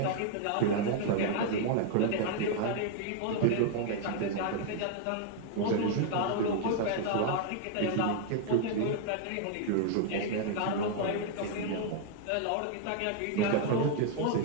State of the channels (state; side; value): different; both; correlation 0.00